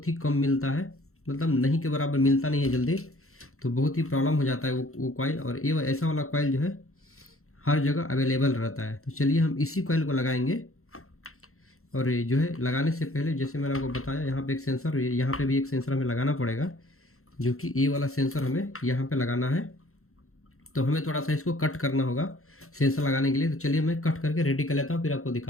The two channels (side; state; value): right; late; 0.63 ms